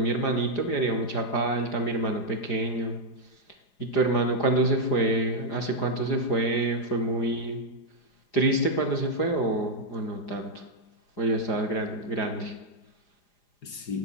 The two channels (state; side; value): late; right; 4.9 ms